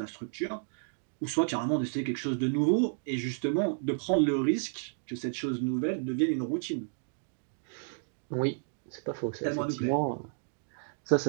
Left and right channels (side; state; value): left; silent; 57 dB below the other